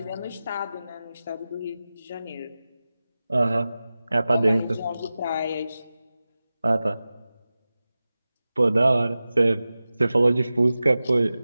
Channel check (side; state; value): both; inverted; correlation -0.95